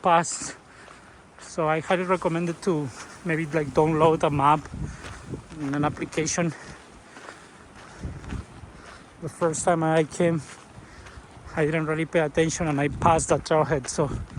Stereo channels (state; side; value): identical; both; correlation 1.00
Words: So I highly recommend it to maybe like download a map in an application. The first time I came, I didn't really pay attention and I passed the trailhead, so